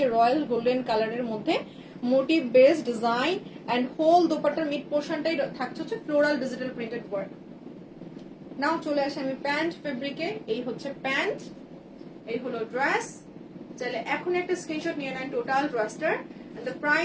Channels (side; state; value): both; identical; correlation 1.00